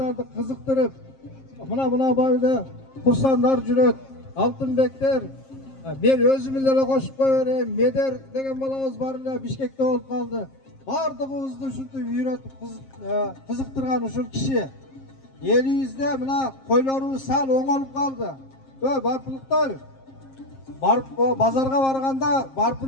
кызыктырып, мына барды курсандар жүрөт, алтынбектер. Мен өзүм эле кошуп кое берейин. Медер деген балабыз бар эле Бишкекте болуп калды. Бардыгыбызды ушинтип үйрөтүп кызыктырган ушул киши. Элибизде мына койлорубуз сал оңолуп калды. Барпылыктар. Базарга барганда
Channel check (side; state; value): right; late; 7.5 ms